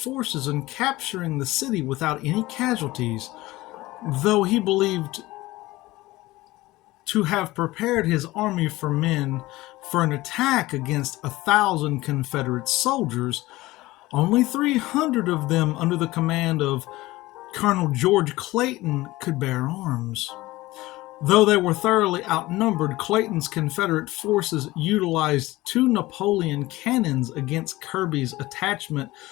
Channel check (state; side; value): quieter; right; 18.9 dB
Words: and capturing the city without any casualties, though he believed to have prepared his army for men for an attack against 1,000 Confederate soldiers. Only 300 of them, under the command of Colonel George Clayton, could bear arms. Though they were thoroughly outnumbered, Clayton's Confederate forces utilized 2 Napoleon cannons against Kirby's attachment